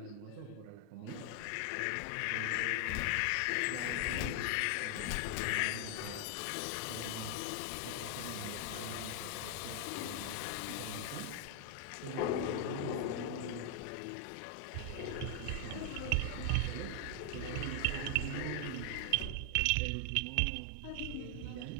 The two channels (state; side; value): different; both; correlation 0.00